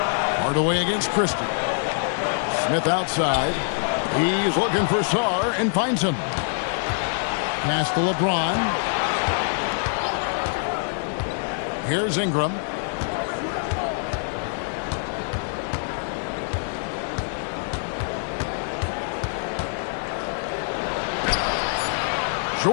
Hardaway against Christie. Smith outside. He's looking for Sarr and finds him. Pass to LeBron. Here's Ingram.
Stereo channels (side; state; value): right; silent; digital silence